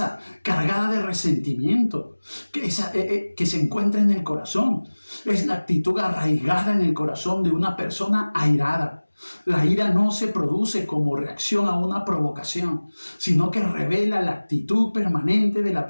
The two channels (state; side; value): inverted; both; correlation -1.00